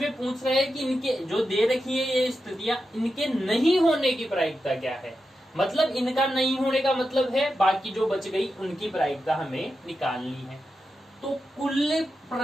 पूछ रहा है कि इनके जो दे रखी है ये स्थितियां, इनके नहीं होने की प्रायिकता क्या है। मतलब इनका नहीं होने का मतलब है बाकी जो बच गई उनकी प्रायिकता हमें निकालनी है। तो कुल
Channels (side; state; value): both; normal; correlation 0.89